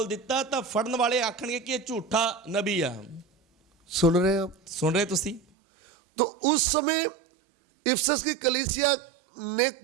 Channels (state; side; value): drops out; left; at 5.4 s